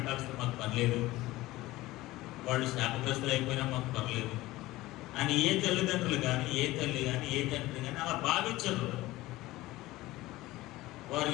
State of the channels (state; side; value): quieter; right; 18.1 dB